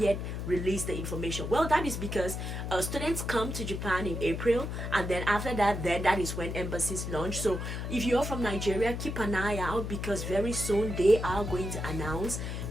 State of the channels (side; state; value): left; noise; hum, 4 dB below the sound